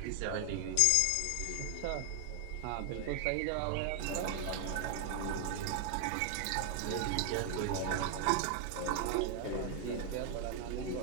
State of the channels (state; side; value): different; both; correlation 0.00